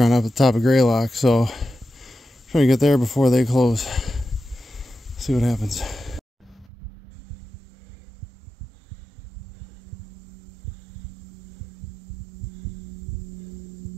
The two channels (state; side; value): drops out; left; at 6.7 s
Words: up at the top of Greylock, so I'm trying to get there before they close. See what happens.